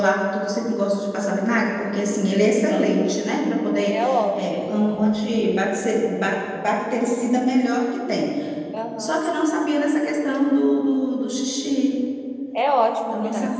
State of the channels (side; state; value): both; identical; correlation 1.00